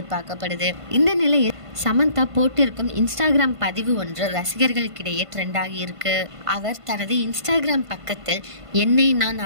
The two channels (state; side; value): late; left; 1.5 ms